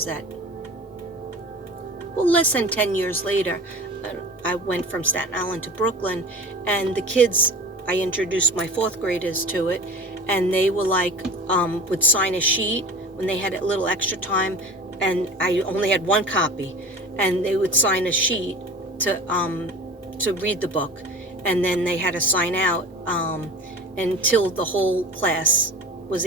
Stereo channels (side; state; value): both; normal; correlation 0.36